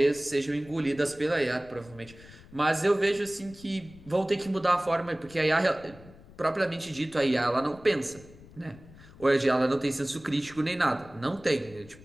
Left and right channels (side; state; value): left; noise; rumble, 21 dB below the sound